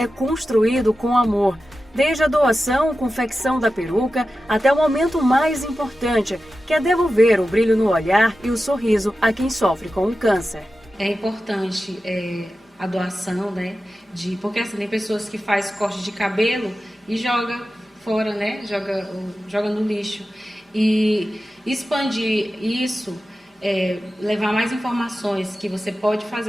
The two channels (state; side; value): normal; both; correlation 0.93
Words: construído com amor. Desde a doação, confecção da peruca, até o momento mais importante, que é devolver o brilho no olhar e o sorriso a quem sofre com o câncer. É importante a doação, né? Porque assim, tem pessoas que fazem corte de cabelo e joga fora, né? Joga no lixo. E expandir isso, levar mais informações que você pode